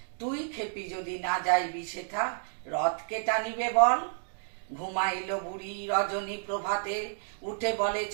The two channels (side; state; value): left; silent; digital silence